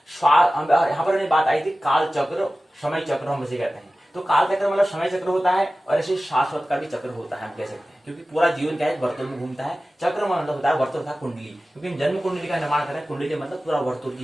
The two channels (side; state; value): both; normal; correlation 0.96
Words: यहाँ पर हमने बात आई थी काल चक्र, समय चक्र हम इसे कहते हैं। तो काल चक्र मतलब समय चक्र होता है, और ऐसे शाश्वत का भी चक्र होता है हम कह सकते हैं, क्योंकि पूरा जीवन क्या है, वर्तुल में घूमता है। चक्र मतलब होता है वर्तुल तथा कुंडली, क्योंकि हम जन्म कुंडली का निर्माण कर रहे हैं। कुंडली मतलब पूरा वर्तुल